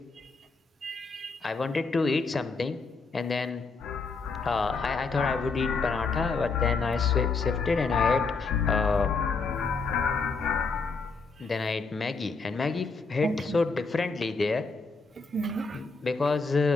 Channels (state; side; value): quieter; right; 4.2 dB